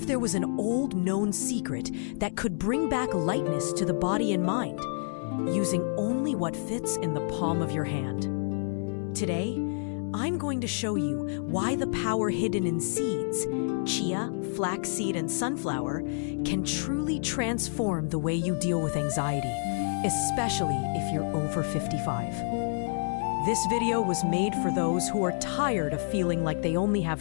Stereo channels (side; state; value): right; silent; digital silence